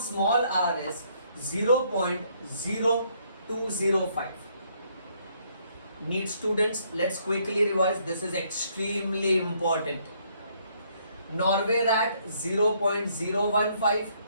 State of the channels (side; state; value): both; inverted; correlation -0.69